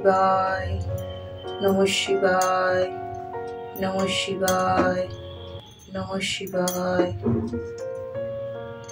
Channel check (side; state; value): both; identical; correlation 1.00